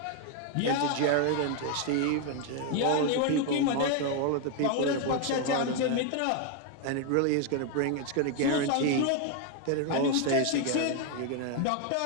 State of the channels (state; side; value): different; both; correlation 0.01